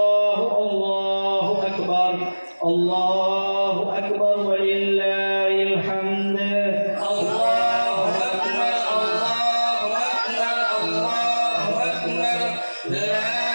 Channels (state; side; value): inverted; both; correlation -1.00